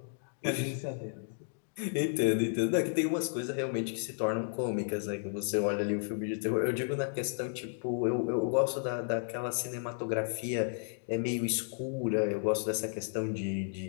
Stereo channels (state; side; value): silent; right; digital silence